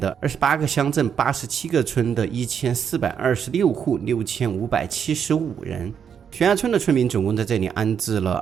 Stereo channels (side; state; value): left; quieter; 7.7 dB